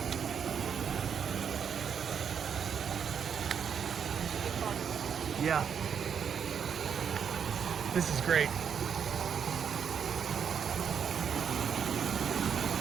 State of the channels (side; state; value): left; quieter; 7.5 dB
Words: Yeah. This is great.